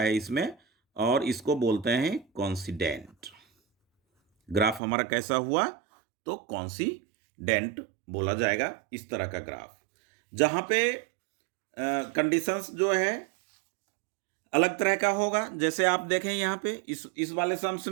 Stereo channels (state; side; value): drops out; left; at 4.8 s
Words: इसमें, और इसको बोलते हैं कॉन्सिडेंट। ग्राफ हमारा कैसा हुआ, तो कॉन्सिडेंट बोला जाएगा इस तरह का ग्राफ, जहां पे कंडीशंस जो है अलग तरह का होगा। जैसे आप देखें यहां पे इस वाले सम्स